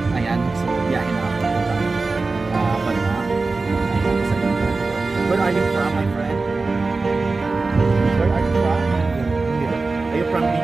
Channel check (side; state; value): left; quieter; 3.8 dB